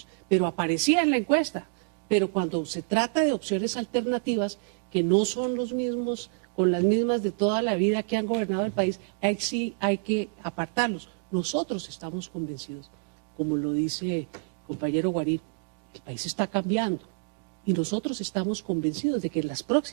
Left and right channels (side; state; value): left; silent; digital silence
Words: pero aparecía en la encuesta. Pero cuando se trata de opciones alternativas que no son los mismos, con las mismas de toda la vida que han gobernado el país, ahí sí hay que apartarlos. Nosotros estamos convencidos, como lo dice el compañero Guarín, el país está cambiando y nosotros estamos convencidos de que en las